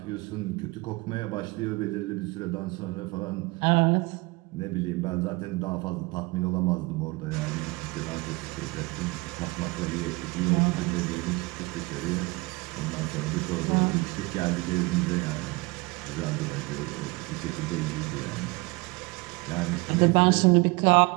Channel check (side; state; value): left; quieter; 24.7 dB